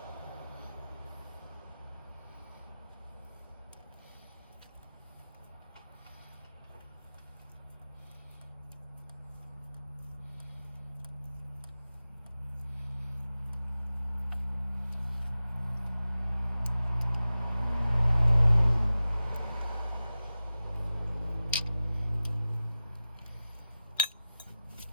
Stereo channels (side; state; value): both; inverted; correlation -0.95